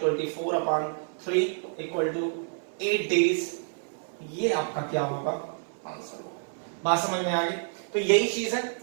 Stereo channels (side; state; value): left; silent; 59 dB below the other